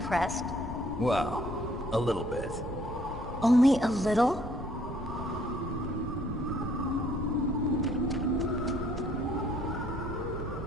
Well, a little bit. Only a little?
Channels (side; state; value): both; normal; correlation 0.63